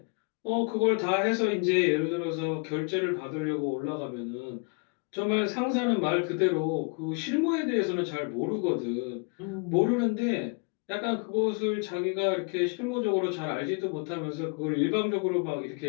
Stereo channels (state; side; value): quieter; right; 35.9 dB